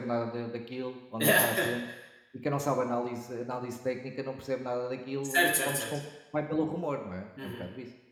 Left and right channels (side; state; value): both; identical; correlation 1.00